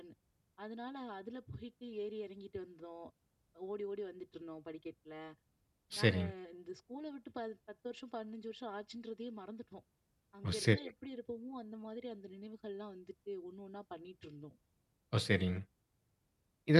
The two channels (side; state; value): both; identical; correlation 1.00